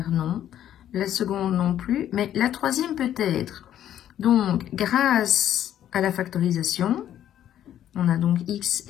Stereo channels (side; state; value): right; quieter; 11.1 dB